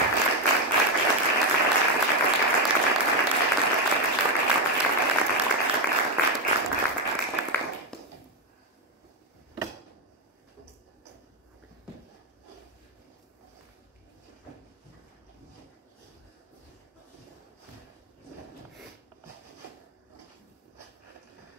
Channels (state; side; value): normal; both; correlation 0.07